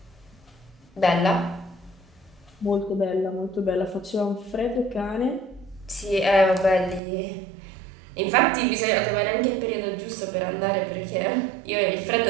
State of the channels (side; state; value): left; drops out; at 7.0 s